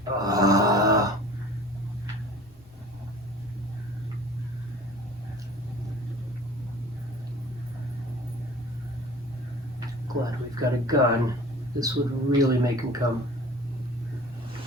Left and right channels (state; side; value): normal; both; correlation 0.44